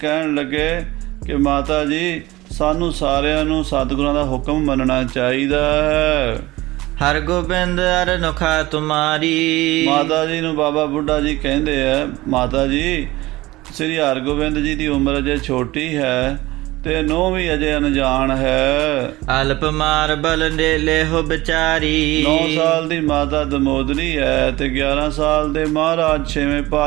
ਲੱਗੇ ਕਿ ਮਾਤਾ ਜੀ ਸਾਨੂੰ ਸਾਰਿਆਂ ਨੂੰ ਸਤਿਗੁਰਾਂ ਦਾ ਹੁਕਮ ਮੰਨਣਾ ਚਾਹੀਦਾ ਹੈ। ਹਰ ਗੋਬਿੰਦ ਅਰ ਨੁਖਾ ਤੁਮਾਰੀ, ਮਾਤਾ ਜੀ ਨੂੰ ਬਾਬਾ ਬੁੱਢਾ ਜੀ ਕਹਿੰਦੇ ਆ ਮਾਤਾ ਜੀ ਸ੍ਰੀ ਹਰਗੋਬਿੰਦ ਜੀ ਦੀ ਉਮਰ ਅਜੇ ਛੋਟੀ ਹੈ ਤੇ ਨੂੰਹ ਵੀ ਅਜੇ ਅਣਜਾਣ ਹੈ। ਅਲਪ ਮਾਰ ਬਲ ਨੇਲੇ ਹੋ ਵਿਚਾਰੀ, 9 ਸਾਲ ਦੀ ਮਾਤਾ ਦਮੋਦਰੀ ਹੈ ਤੇ 11 ਸਾਲ ਦੇ ਮਹਾਰਾਜ ਛੇਵੇਂ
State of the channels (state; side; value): quieter; left; 19.0 dB